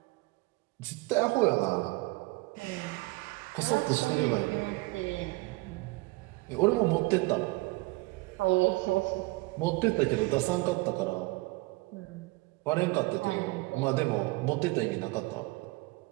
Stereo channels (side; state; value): left; quieter; 23.1 dB